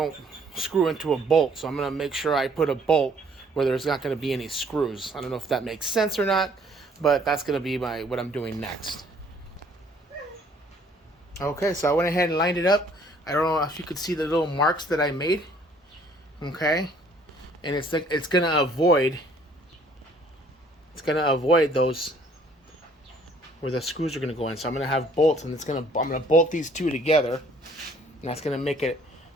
screw into a bolt. So I'm going to make sure I put a bolt where there's not going to be any screws. I don't know if that makes sense or not, but that's going to be what I'm doing next. Okay, so I went ahead and lined it up. I don't know if you could see the little marks that I made. Okay, and it's going to avoid those where the screws are going to go in. So I'm going to have bolts, and I'm going to bolt these two together, and that's going to make it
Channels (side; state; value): both; normal; correlation 0.59